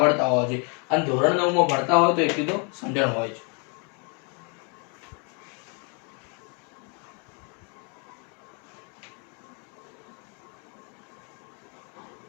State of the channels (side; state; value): right; quieter; 35.7 dB